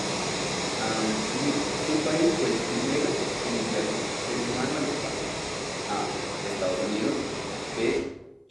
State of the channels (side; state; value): both; identical; correlation 1.00